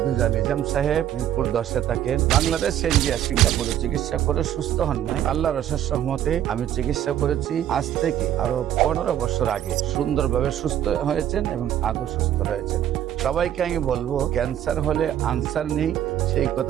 নিজাম সাহেব মিরপুর 10-এ থাকেন। বাংলাদেশ ইন্ডিয়া সিঙ্গাপুরে চিকিৎসা করে সুস্থ হন নাই। আল্লাহর অশেষ রহমতে আমি চিকিৎসা করেছি আজ থেকে আরো 15 বছর আগে। সুন্দরভাবে সুস্থ হয়েছেন এবং আদৌ সুস্থ রয়েছেন। সবাইকে আমি বলবো ক্যান্সার হলে আনসার নেই, সেই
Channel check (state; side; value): quieter; left; 11.1 dB